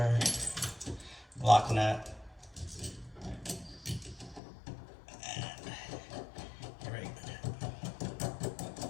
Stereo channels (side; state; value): right; drops out; at 4.4 s